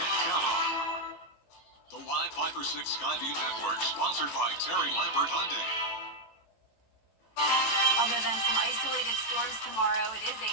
count on. The Live 5 for 6 Skyview Network, sponsored by Terry Lambert Hyundai. Other than some isolated storms tomorrow, it is a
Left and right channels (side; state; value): right; late; 18 ms